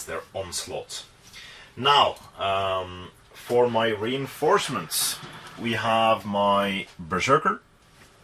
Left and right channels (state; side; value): identical; both; correlation 1.00